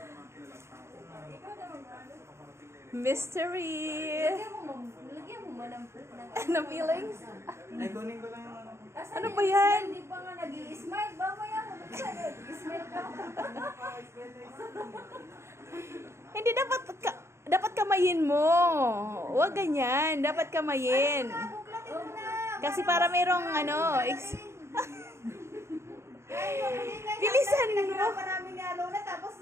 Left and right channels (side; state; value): left; late; 0.13 ms